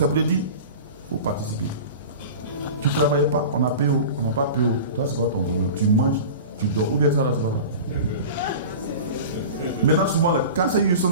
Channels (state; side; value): inverted; both; correlation -0.34